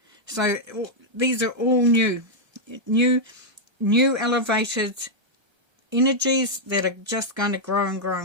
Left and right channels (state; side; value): late; left; 1.3 ms